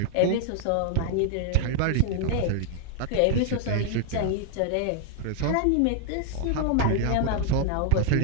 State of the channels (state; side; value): different; both; correlation 0.00